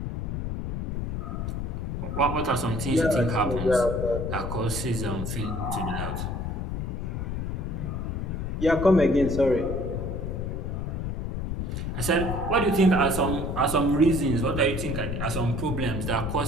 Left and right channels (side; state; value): left; noise; rumble, 3 dB below the sound